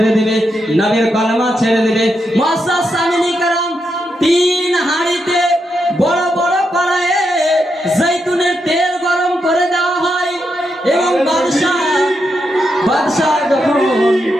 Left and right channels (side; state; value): both; normal; correlation 0.83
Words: দেবে, নবীর কলেমা ছেড়ে দেবে। মুআজ্জাজ সামিনী کرام, 3 হাঁড়িতে বড় বড় কড়াইয়ে জৈতুনের তেল গরম করে দেওয়া হয় এবং বাদশাহ যখন